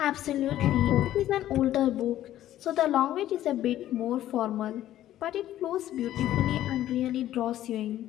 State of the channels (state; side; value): quieter; right; 13.0 dB